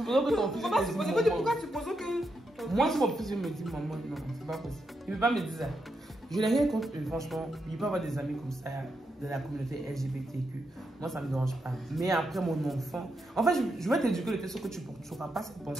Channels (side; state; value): both; normal; correlation 0.83